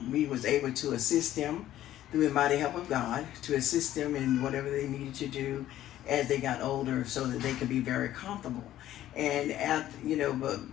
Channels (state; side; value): quieter; right; 13.1 dB